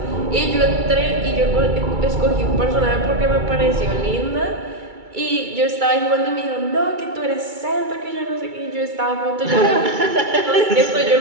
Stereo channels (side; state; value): left; late; 2.3 ms